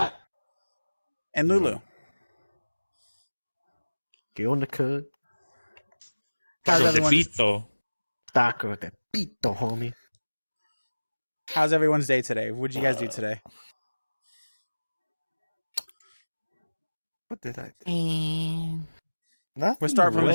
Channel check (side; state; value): both; inverted; correlation -1.00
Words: and Lulu. Get on the cut. How's Taco de everyone's, pito. Taco de pito, homie. how's everyone's day today? What'd you guys do today? what did I do? Nothing We'll start from the